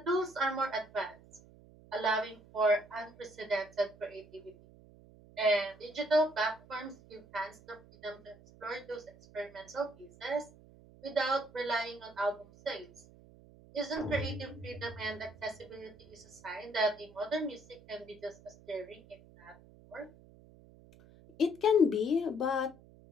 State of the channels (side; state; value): right; noise; hum, 23 dB below the sound